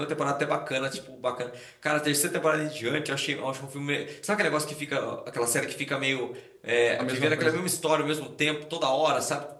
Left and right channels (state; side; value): identical; both; correlation 1.00